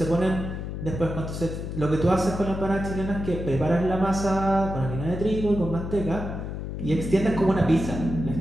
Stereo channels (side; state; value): left; noise; hum, 6 dB below the sound